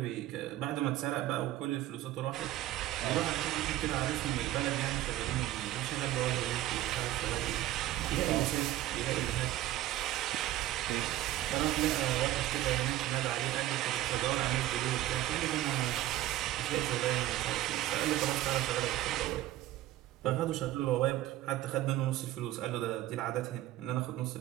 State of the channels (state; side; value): quieter; left; 14.7 dB